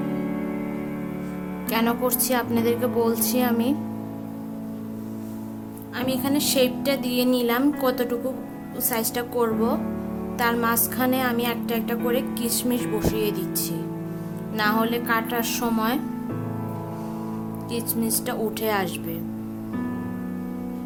কেন করছি আপনাদেরকে বলছি। আমি এখানে শেপটা দিয়ে নিলাম, কতটুকু সাইজটা করব। তার মাঝখানে আমি একটা একটা করে কিশমিশ বসিয়ে দিচ্ছি। না হলে কাটার সময় কিচমিচটা উঠে আসবে।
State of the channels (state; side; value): identical; both; correlation 1.00